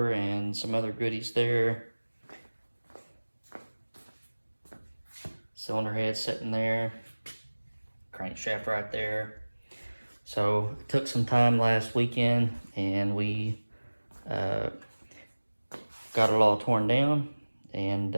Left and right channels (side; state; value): both; inverted; correlation -1.00